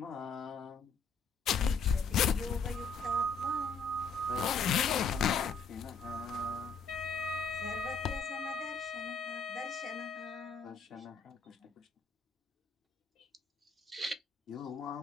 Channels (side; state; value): right; quieter; 4.5 dB